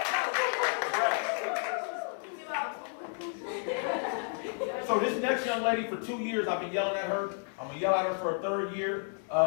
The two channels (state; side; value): silent; right; 57 dB below the other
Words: So this next young lady, for 2 years, I've been yelling at her. I'm going to yell at her for a 3rd year.